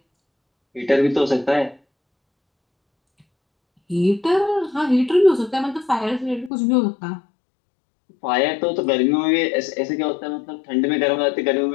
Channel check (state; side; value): drops out; right; at 6.5 s